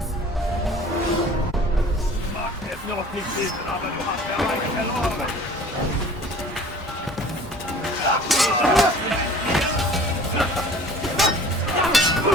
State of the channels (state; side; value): normal; both; correlation 0.47